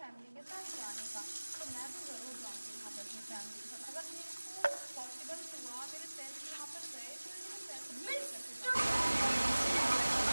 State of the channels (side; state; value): both; inverted; correlation -1.00